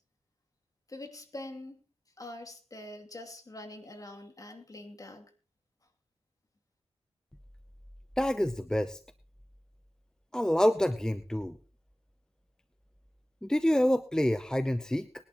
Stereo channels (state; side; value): normal; both; correlation 0.98